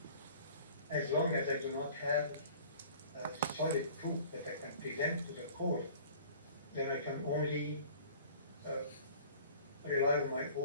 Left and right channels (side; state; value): both; inverted; correlation -0.48